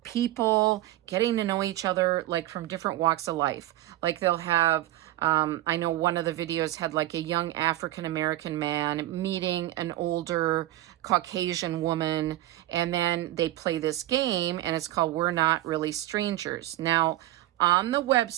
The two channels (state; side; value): quieter; left; 15.3 dB